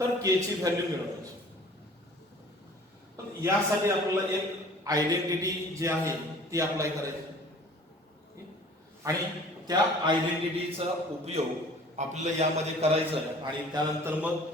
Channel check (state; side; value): normal; both; correlation 0.49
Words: k ची व्हॅल्यू मिळवायची. पण यासाठी आपल्याला एक आयडेंटिटी जी आहे ती अप्लाय करायची आणि त्या आयडेंटिटीचा उपयोग आपल्याला यामध्ये करायचा आहे आणि त्यानंतर मग